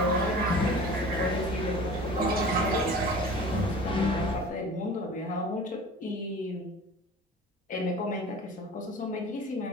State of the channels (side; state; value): both; normal; correlation 0.40